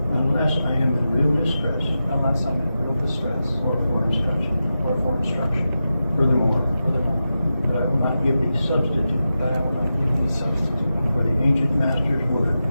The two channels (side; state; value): both; inverted; correlation -0.91